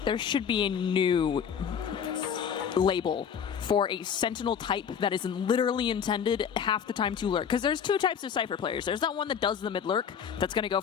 there should be a new label for a Sentinel type that is literally intended half the time to lurk. Because there's 2 types of Cypher players. There's that one that does the mid-lurk, that's going to go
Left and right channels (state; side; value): quieter; right; 7.6 dB